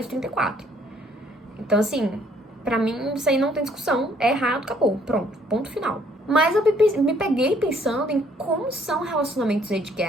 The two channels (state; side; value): normal; both; correlation 0.64